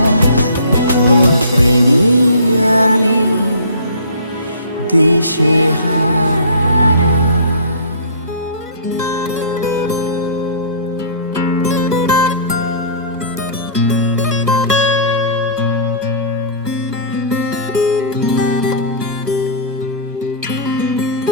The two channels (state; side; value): inverted; both; correlation -0.44